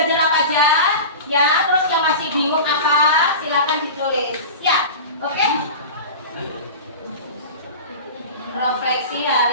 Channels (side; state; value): both; inverted; correlation -0.31